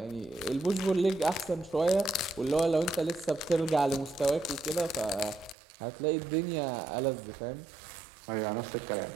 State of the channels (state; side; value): drops out; left; at 5.6 s